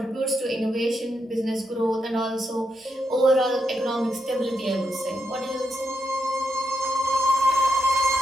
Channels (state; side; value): normal; both; correlation 0.83